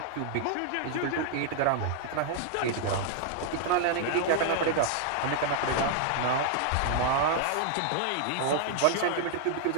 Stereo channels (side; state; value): both; different; correlation 0.00